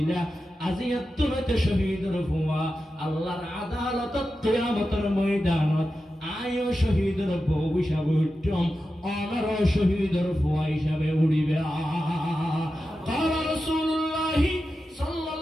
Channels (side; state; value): both; normal; correlation 0.91